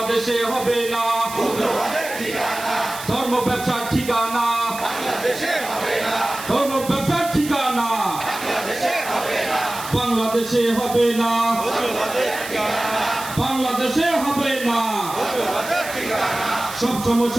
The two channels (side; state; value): right; noise; hiss, 11 dB below the sound